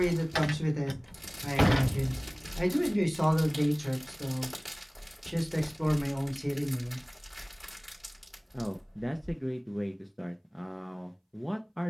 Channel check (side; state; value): both; identical; correlation 1.00